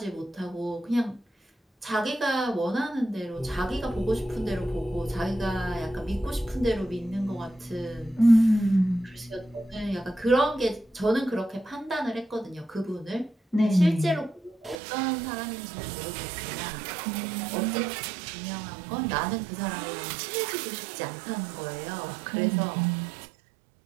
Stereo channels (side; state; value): left; drops out; at 14.8 s